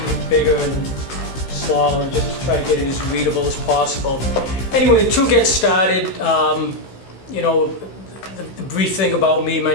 bigger and smaller and just to try to get it as readable as possible. Anyway, to get started, the brief thing about me, my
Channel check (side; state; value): right; late; 16 ms